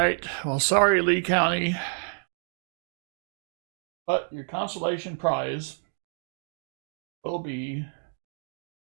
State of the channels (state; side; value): silent; left; 59 dB below the other